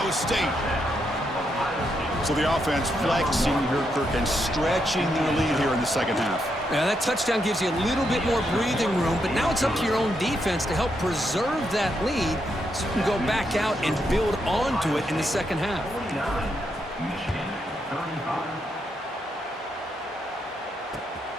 State. So the offense flexing here, Kirk, and stretching their lead here in the 2nd half. Now, that touchdown gives you a little bit more breathing room, but now it's up to your own defense to help preserve that lead so you can go back out and build onto it in the 2nd half.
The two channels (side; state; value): both; normal; correlation 0.80